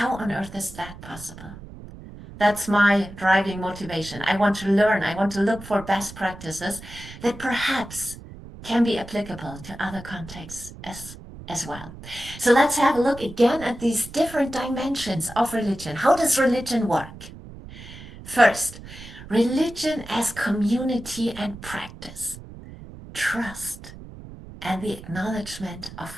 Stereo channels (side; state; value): right; noise; rumble, 15 dB below the sound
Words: on earth is that possible? That's my driving motivation. I want to learn. I want to look for best practices that perhaps can be applicable to other contexts as well. So let's have a look again at these different dimensions of religion. How does religion work? First, religion as community and practice, trust, and the acknowledgement